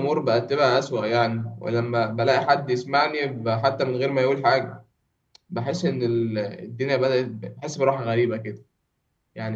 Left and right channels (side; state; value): both; identical; correlation 1.00